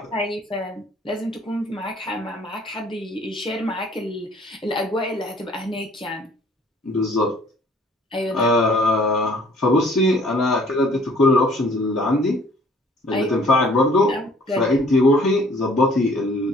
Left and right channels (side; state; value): both; normal; correlation 0.57